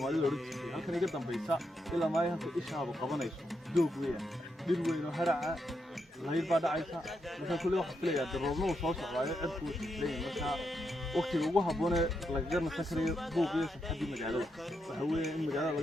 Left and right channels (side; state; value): both; normal; correlation 0.82